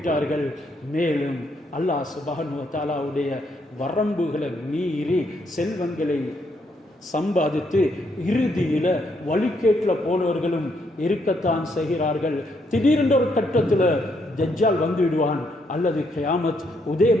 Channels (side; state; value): both; normal; correlation 0.74